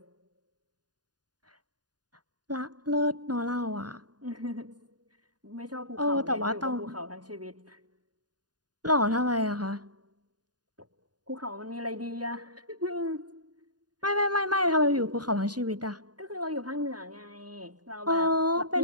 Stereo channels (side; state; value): left; late; 0.69 ms